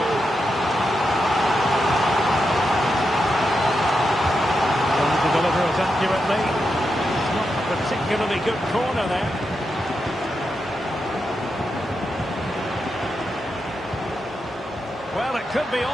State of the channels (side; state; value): both; normal; correlation 0.86